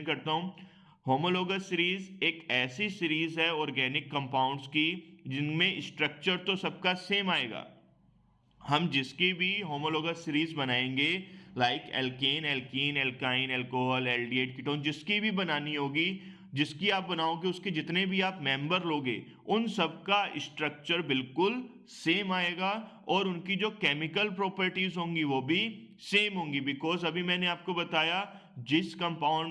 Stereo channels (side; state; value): both; identical; correlation 1.00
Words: करता हूँ। होमोलोगस सीरीज एक ऐसी सीरीज है ऑर्गेनिक कंपाउंड्स की जिनमें स्ट्रक्चर तो सबका सेम आएगा। हम जिसकी भी होमोलोगस सीरीज बनाएंगे, like alkane, alkene, alkyne, alcohol, aldehyde, ketone, जिसकी भी बनानी होगी, जिसकी आप बनाओगे उसके जितने भी आप मेंबर लोगे उन सबका स्ट्रक्चर बिल्कुल सेम आएगा और उनकी जो केमिकल प्रॉपर्टीज होंगी वो भी सेम होंगी, बिकॉज अभी मैंने आपको बताया जिस